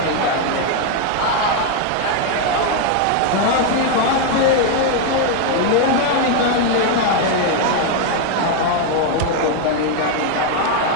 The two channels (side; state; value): both; different; correlation 0.01